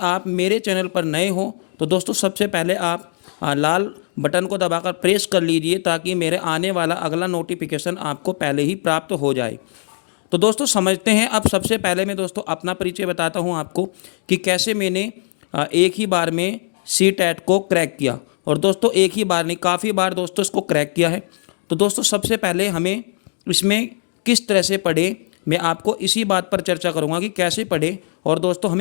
मेरे चैनल पर नए हो तो दोस्तों सबसे पहले आप लाल बटन को दबाकर प्रेस कर लीजिए ताकि मेरे आने वाला अगला नोटिफिकेशन आपको पहले ही प्राप्त हो जाए। तो दोस्तों समझते हैं। अब सबसे पहले मैं दोस्तों अपना परिचय बताता हूं आपको कि कैसे मैंने एक ही बार में सी टैट को क्रैक किया। और दोस्तों एक ही बार नहीं, काफ़ी बार दोस्तों इसको क्रैक किया है। तो दोस्तों सबसे पहले हमें इसमें किस तरह से पढ़े, मैं आपको इसी बात पर चर्चा करूंगा कि कैसे पढ़े और दोस्तों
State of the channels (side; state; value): right; silent; digital silence